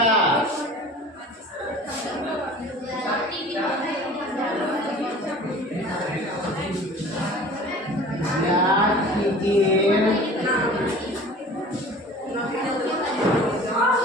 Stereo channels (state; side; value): normal; both; correlation 0.43